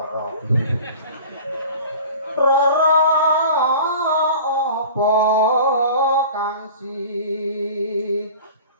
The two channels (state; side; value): inverted; both; correlation -0.40